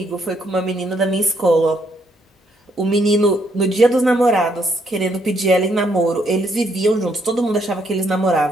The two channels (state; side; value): normal; both; correlation 0.72